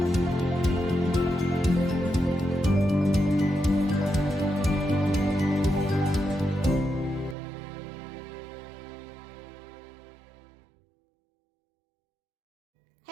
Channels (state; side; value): drops out; left; at 7.4 s